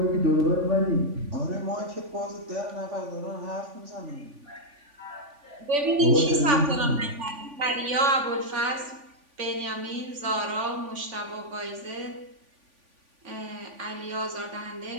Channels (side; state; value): left; late; 3.5 ms